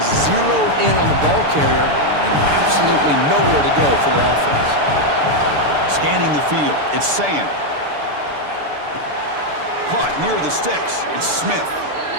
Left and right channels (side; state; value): left; late; 6.9 ms